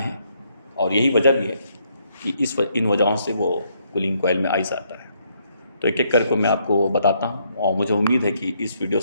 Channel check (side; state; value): both; inverted; correlation -0.73